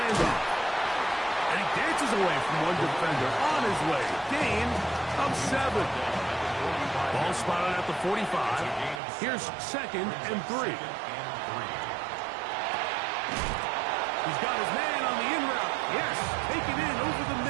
And he dances away from one defender on his way. Gain of 7. Ball spotted at the 45. Here's second and 3. He's got his man on the in route. Yes, taken in over the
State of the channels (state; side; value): drops out; left; at 9.0 s